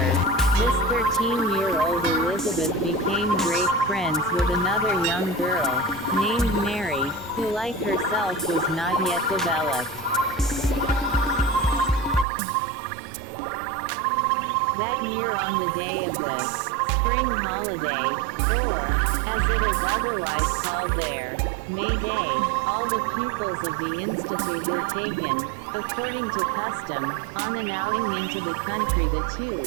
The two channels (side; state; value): left; drops out; at 12.2 s